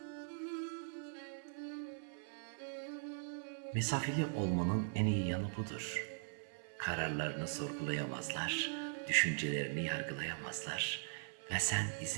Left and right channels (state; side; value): silent; left; 51 dB below the other